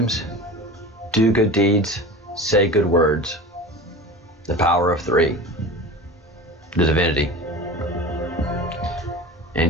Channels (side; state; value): both; normal; correlation 0.34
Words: Do good deeds, say good words. The power of three, the divinity.